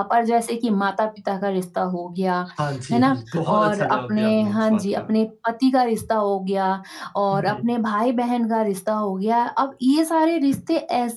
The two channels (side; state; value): both; identical; correlation 1.00